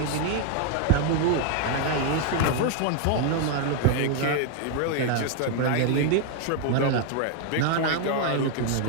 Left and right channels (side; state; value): both; different; correlation 0.00